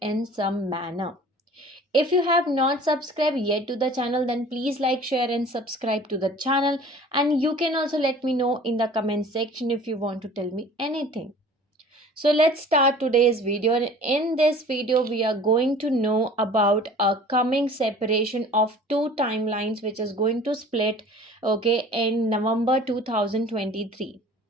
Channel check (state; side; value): normal; both; correlation 0.46